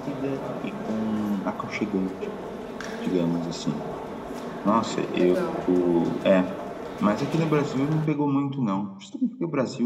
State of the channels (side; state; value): both; identical; correlation 1.00